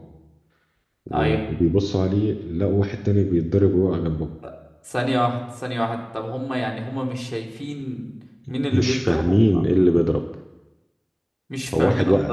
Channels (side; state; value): both; identical; correlation 1.00